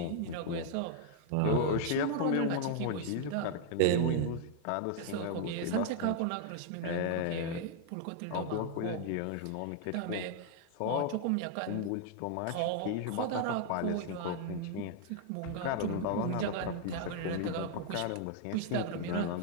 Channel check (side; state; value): both; different; correlation 0.00